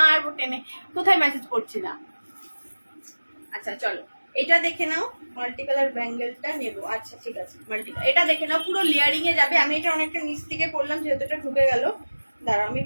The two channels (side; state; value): both; inverted; correlation -1.00